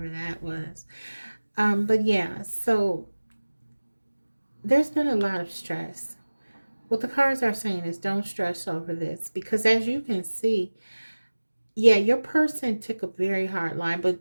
that was. But yeah, so there's been a lot of stress. What the cards are saying is don't stress over this, because as you can see, yeah, your person took a very hard line, but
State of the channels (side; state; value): both; inverted; correlation -1.00